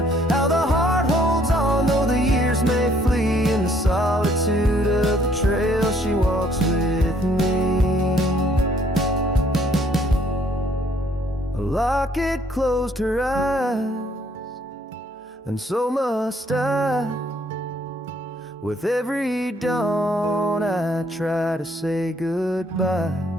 how the heart holds on, though the years may flee. In the solitude of the trail she walks with me. A locket closed her eyes, and so must I. With every dawn I try to say goodbye,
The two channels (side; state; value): both; normal; correlation 0.64